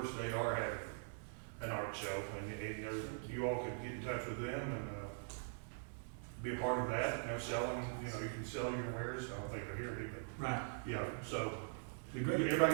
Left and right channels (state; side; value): silent; left; digital silence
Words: they are having an art show, and you all could get in touch with them and be a part of that, selling, you can sell your wares. I don't think they're here, but Right. yeah, so Be great.